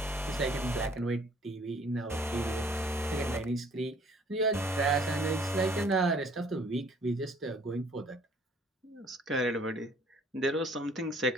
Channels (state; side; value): normal; both; correlation 0.58